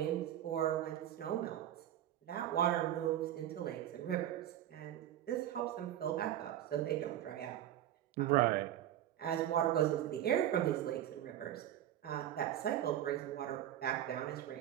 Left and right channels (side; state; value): left; quieter; 12.0 dB